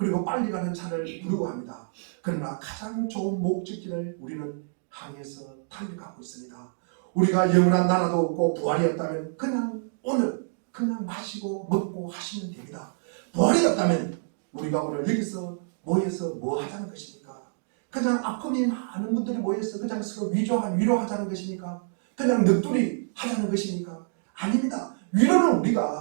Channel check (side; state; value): left; silent; digital silence